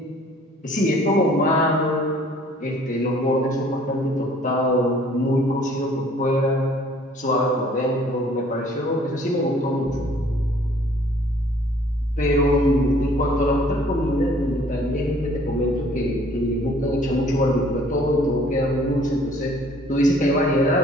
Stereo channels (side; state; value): both; normal; correlation 0.56